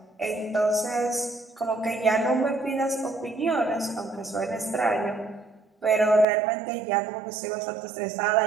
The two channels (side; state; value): left; drops out; at 6.2 s